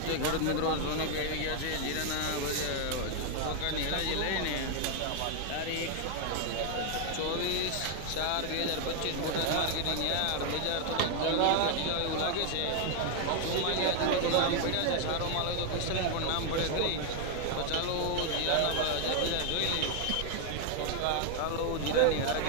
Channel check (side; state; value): both; different; correlation 0.00